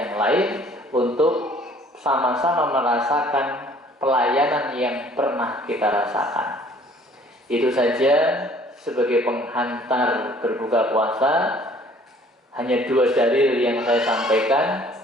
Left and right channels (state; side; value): normal; both; correlation 0.55